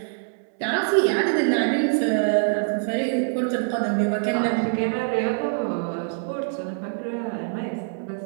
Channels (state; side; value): silent; left; digital silence